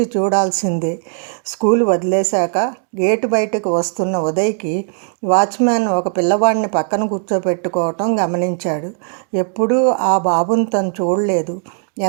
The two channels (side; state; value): left; silent; 66 dB below the other